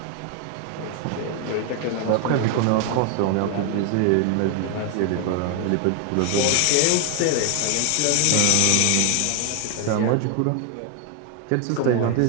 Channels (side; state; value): both; different; correlation 0.00